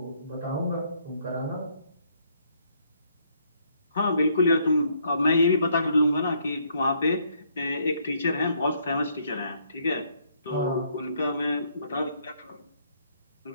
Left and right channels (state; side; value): inverted; both; correlation -0.69